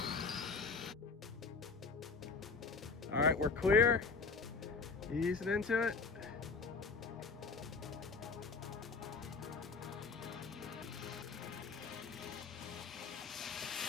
All right, we're clear. Easing into it.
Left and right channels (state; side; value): quieter; right; 4.5 dB